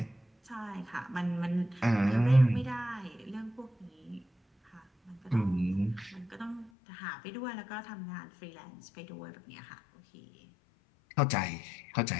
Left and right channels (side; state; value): right; drops out; at 6.7 s